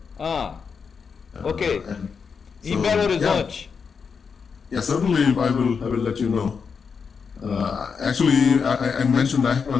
Okay. In Belo Horizonte. Yeah, certainly I will let you know. Actually, I mentioned I have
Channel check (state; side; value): quieter; right; 5.9 dB